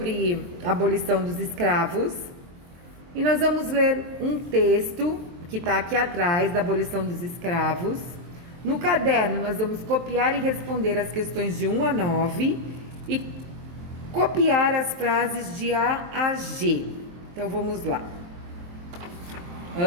a abolição dos escravos. E nós vamos ler um texto que está aqui atrás da abolição dos escravos. No caderno nós vamos copiar e responder as questões de 1 a 9 e copiar as frases de A a G. Então vamos lá.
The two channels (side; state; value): left; late; 23 ms